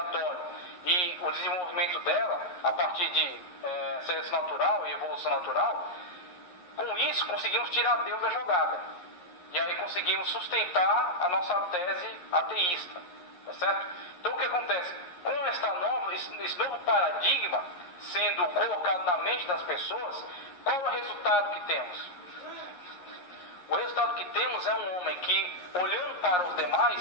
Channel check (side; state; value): right; late; 11 ms